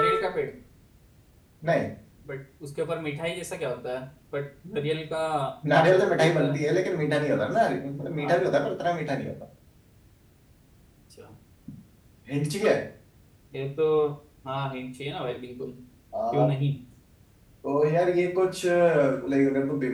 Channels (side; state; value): both; identical; correlation 1.00